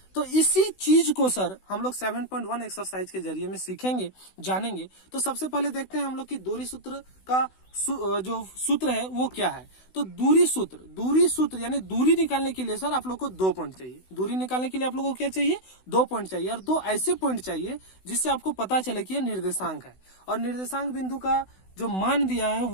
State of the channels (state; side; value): late; right; 16 ms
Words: तो इसी चीज को सर हम लोग 7.1 एक्सरसाइज के जरिए में सीखेंगे, जानेंगे। तो सबसे पहले देखते हैं हम लोग की दूरी सूत्र का जो सूत्र है वो क्या है। तो दूरी सूत्र यानी दूरी निकालने के लिए सर आप लोग को 2 पॉइंट चाहिए। दूरी निकालने के लिए आप लोग को क्या चाहिए, 2 पॉइंट चाहिए, और 2 ऐसे पॉइंट चाहिए जिससे आपको पता चले कि यह निर्देशांक है, और निर्देशांक बिंदु का जो मान दिया है